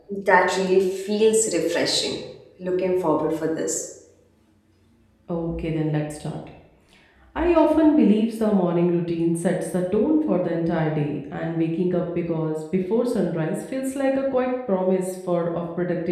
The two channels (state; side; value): identical; both; correlation 1.00